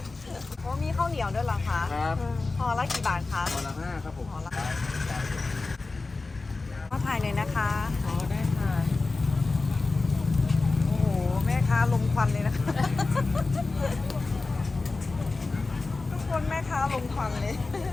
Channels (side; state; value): right; quieter; 3.6 dB